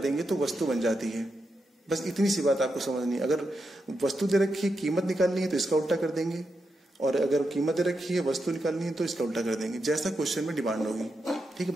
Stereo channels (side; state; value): both; normal; correlation 0.86